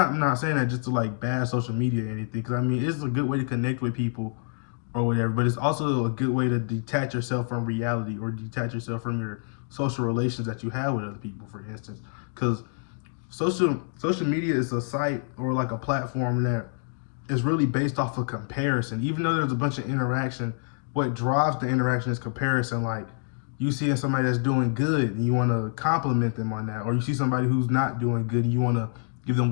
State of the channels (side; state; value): right; silent; 60 dB below the other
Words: not saying that just to like bad social media or anything, because I mean it's a good way to connect with people or whatever, but it's also a good way to detach yourself from reality, or detach yourself from your social relations that you have with other people, for instance. Because social media is a site or like a platform that is really based off of comparison. Even though there's a bunch of interaction, what drives the interaction is comparison. Like you see somebody that's doing good and you want to compliment them on that, or you see somebody who's not doing good and you want to give them